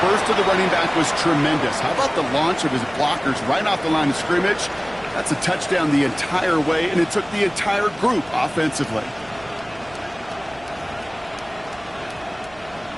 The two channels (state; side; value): noise; right; hum, 23 dB below the sound